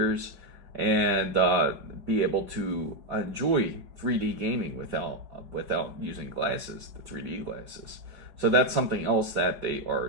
and be able to enjoy 3D gaming without using glasses, the 3D glasses. So that's something else that they are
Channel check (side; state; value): left; late; 5.3 ms